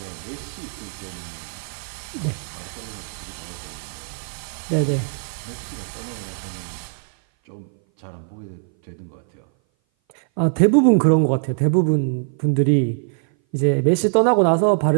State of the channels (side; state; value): left; silent; 58 dB below the other